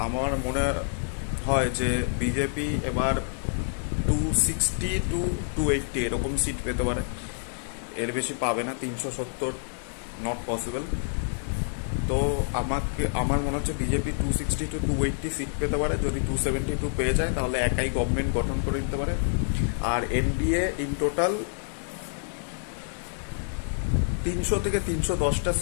আমার মনে হয় যে বিজেপি এবার 260 টু 280 এরকম সিট পেতে পারে, এর বেশি পাবে না। 370 নট পসিবল। তো আমার মনে হচ্ছে বিজেপি 260 টু 280 সিট পেতে পারে। যদি 272 পেয়ে যায় তাহলে একাই গভর্নমেন্ট গঠন করে দিতে পারে। আর এনডিএ ইন টোটাল 300 থেকে 310টা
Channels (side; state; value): right; silent; 60 dB below the other